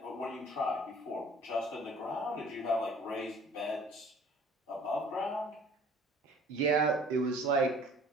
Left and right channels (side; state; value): both; normal; correlation 0.50